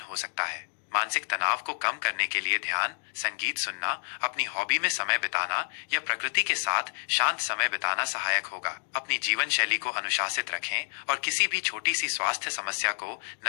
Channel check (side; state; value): right; silent; digital silence